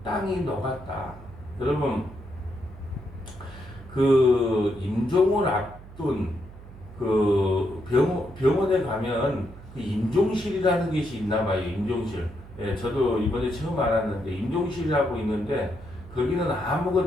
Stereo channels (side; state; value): right; noise; hum, 17 dB below the sound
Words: 땅이 녹았다. 여러분, 그 임종을 앞둔 그 병원에 가면 그 임종실이라는 것이 있나 봐요. 임종실. 예, 저도 이번에 처음 알았는데 임종실이라고 있는데 거기는